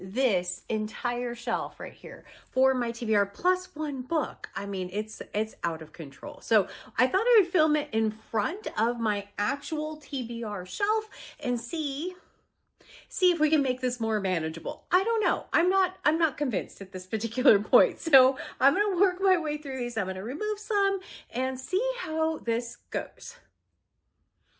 entire shelf right here for my TBR plus one book. I mean, it's out of control. So I thought I would film it in front of my actual TBR shelf and see if we can make this more manageable. I don't know. I'm not convinced at this particular point. So I'm going to work my way through these. I'm going to remove some and see how this goes.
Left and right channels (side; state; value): both; identical; correlation 1.00